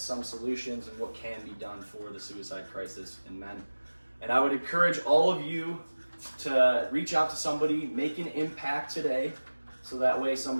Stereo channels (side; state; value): both; inverted; correlation -1.00